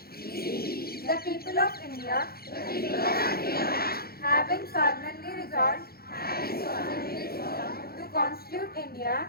the people of India, having solemnly resolved to constitute India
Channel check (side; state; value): right; late; 0.44 ms